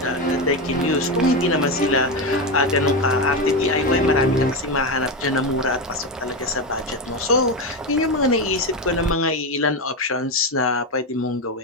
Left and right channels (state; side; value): normal; both; correlation 0.14